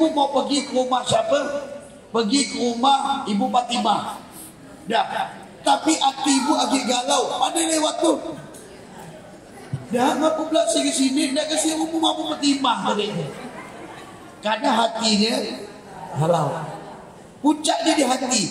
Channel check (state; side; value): identical; both; correlation 1.00